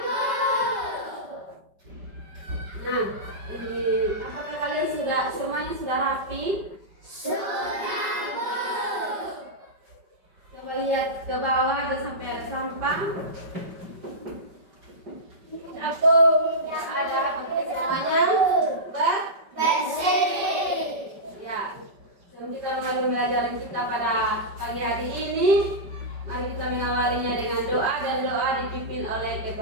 Nah, apakah kalian semuanya sudah rapi? Sudah, Bu. Coba lihat ke bawah, ada sampai ada sampah. Aku Ada pakai semuanya bersih. Ya. Sebelum kita mulai pembelajaran kita pada pagi hari ini, mari kita mengawalinya dengan doa, dan doa dipimpin oleh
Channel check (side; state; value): left; late; 5.2 ms